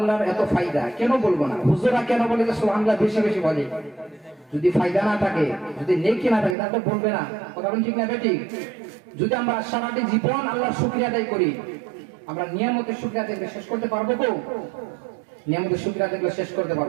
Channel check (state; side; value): drops out; left; at 6.6 s